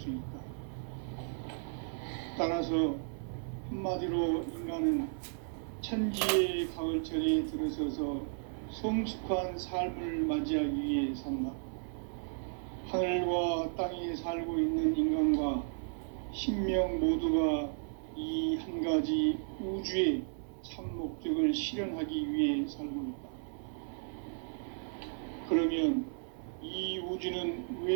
있다. 따라서 한마디로 인간은 천지의 가을철에 들어서서 성숙한 삶을 맞이하기 위해 산다. 하늘과 땅에 살고 있는 인간과 신명 모두가 이 한 가지 우주의 참 목적을 실현하기 위해 살고 있다. 그러면 이 우주는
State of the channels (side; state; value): left; silent; 55 dB below the other